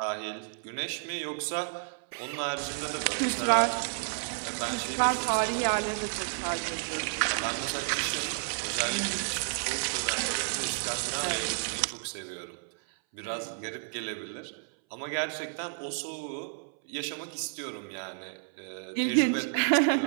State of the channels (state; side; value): silent; left; 57 dB below the other